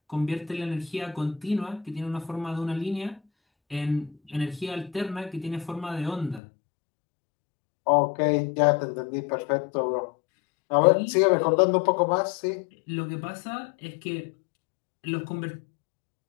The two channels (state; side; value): drops out; right; at 6.4 s